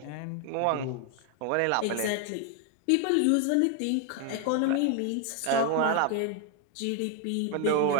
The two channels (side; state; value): both; different; correlation 0.01